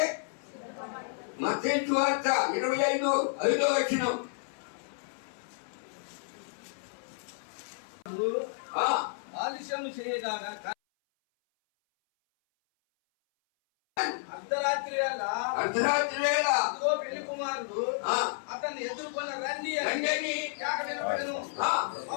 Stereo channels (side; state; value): right; silent; 57 dB below the other